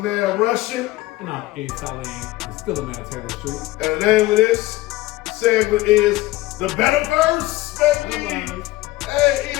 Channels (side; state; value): right; quieter; 17.9 dB